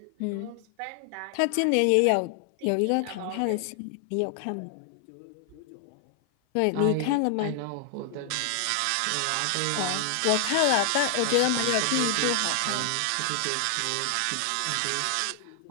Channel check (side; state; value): both; different; correlation 0.00